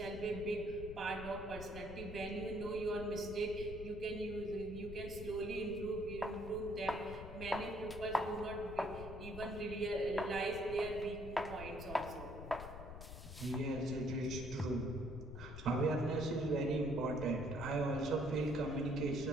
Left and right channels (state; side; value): noise; left; rumble, 10 dB below the sound